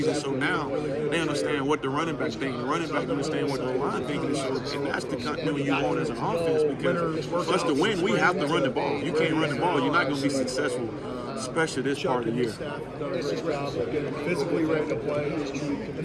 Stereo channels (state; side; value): identical; both; correlation 1.00